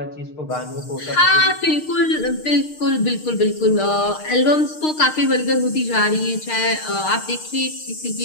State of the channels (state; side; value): late; right; 6.5 ms